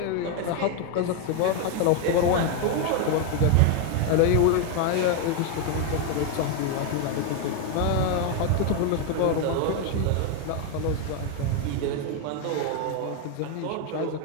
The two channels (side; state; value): both; different; correlation 0.01